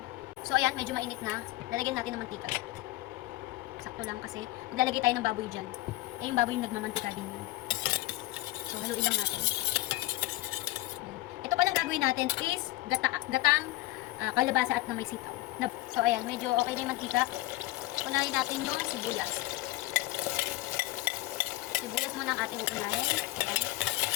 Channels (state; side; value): quieter; right; 17.7 dB